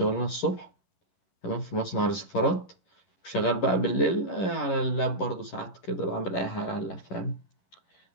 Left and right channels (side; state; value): right; late; 11 ms